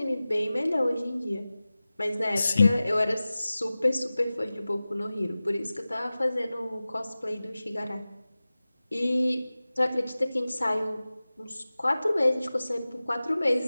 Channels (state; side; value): inverted; both; correlation -0.97